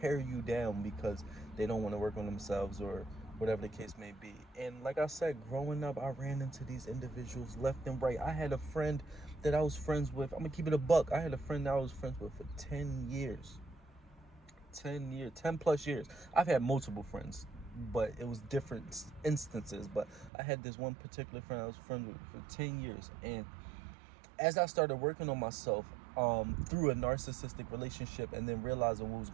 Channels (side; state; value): left; drops out; at 20.3 s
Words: you down because they don't want to work on themselves, or whatever the case may be. And like I said, growing up, I ran into these individuals left and right. I had a friend that I was friends with. I'm gonna keep it a buck. I had a friend that I was friends with for 10 years. 10 plus years. I've had multiple friends, but it was different instances. But I had this one particular friend I was friends with for 10 years. And as I started working on myself through a narcissistic relationship and then realizing what was